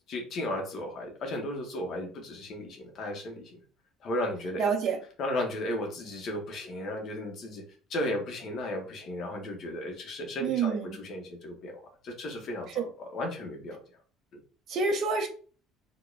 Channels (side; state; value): both; normal; correlation 0.48